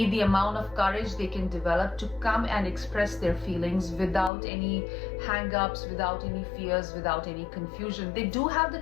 the amount of courage they can develop to come and express their feelings without any hang-ups, without any fears, without any confusion. They do have the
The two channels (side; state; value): right; drops out; at 4.3 s